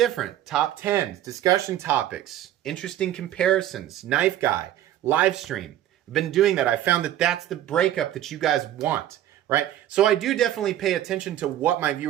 Top 10s, discussion topics, interesting comparisons, Knife Guy, live stream. I've been doing that. I found that that's the breakup that you guys want, right? So I do definitely pay attention to what my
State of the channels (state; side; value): quieter; left; 12.4 dB